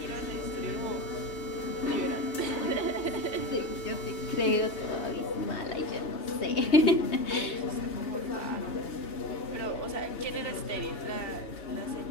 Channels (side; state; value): right; late; 2.8 ms